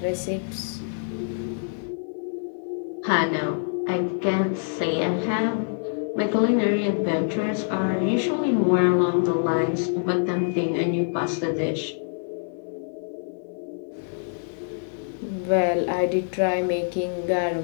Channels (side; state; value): right; silent; digital silence